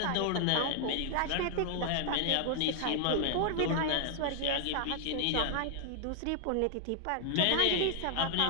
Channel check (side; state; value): both; different; correlation 0.00